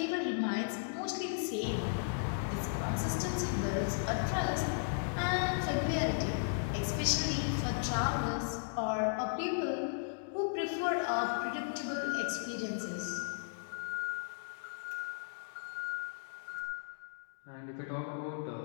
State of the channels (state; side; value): silent; right; digital silence